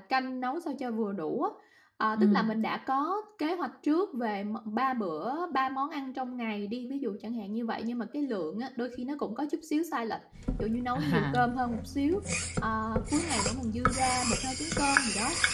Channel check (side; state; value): both; identical; correlation 1.00